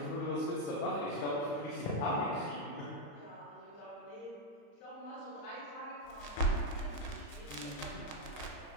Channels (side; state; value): right; late; 35 ms